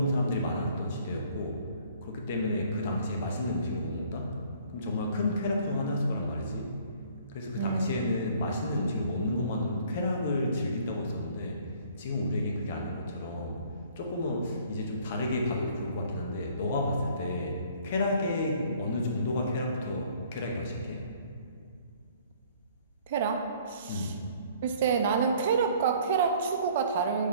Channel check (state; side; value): inverted; both; correlation -0.57